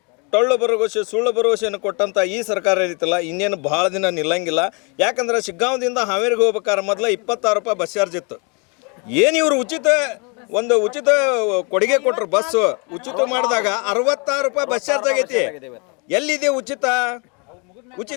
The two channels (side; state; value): right; quieter; 33.1 dB